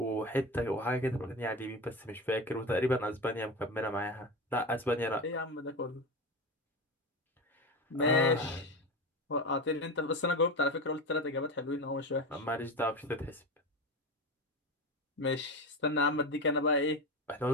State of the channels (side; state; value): both; normal; correlation 0.23